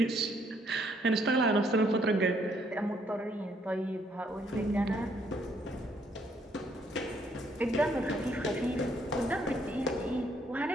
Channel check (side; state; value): both; normal; correlation 0.69